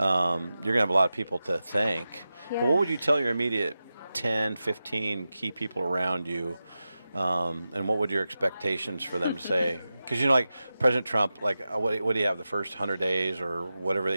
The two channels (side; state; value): both; inverted; correlation -0.92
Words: You're going to have a lot of people to thank. Yeah. But what would you tell your immediate 10, 15 key people around you? And what would your expectations for them say? Because, like President Trump, like what do you have the first 100 days or whatever